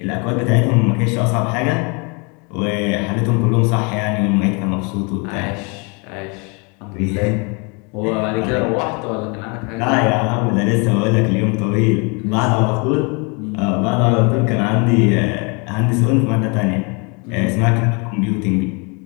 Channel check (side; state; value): right; quieter; 32.2 dB